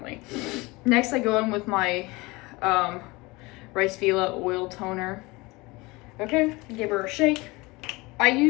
Next, I go in with my RiceFila oil toner. Okay, give her a shake. I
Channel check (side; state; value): right; quieter; 23.4 dB